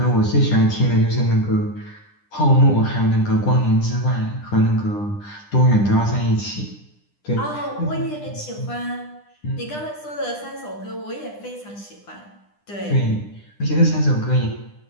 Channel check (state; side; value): late; right; 9.9 ms